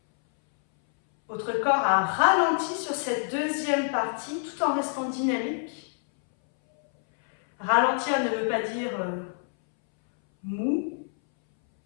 Votre corps a ralenti sur cette deuxième partie tout en restant dynamique. Ralentir ne veut pas dire mou.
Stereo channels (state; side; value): silent; right; 61 dB below the other